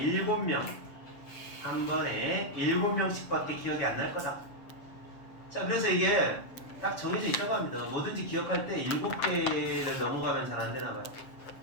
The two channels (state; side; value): late; right; 7.3 ms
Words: 한 번에 7명씩밖에 기억이 안 날 거다. 자, 그래서 이게 딱 정해져 있다고 합니다. 뭐든지 기억할 때 7개를 넘어가면 잘 안 되나 봐요.